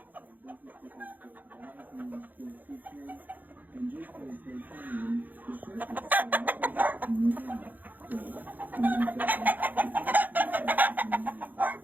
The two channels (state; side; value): late; left; 0.084 ms